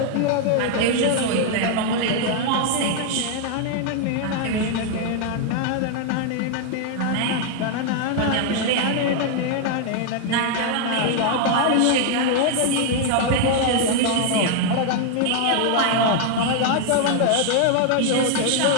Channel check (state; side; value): different; both; correlation 0.00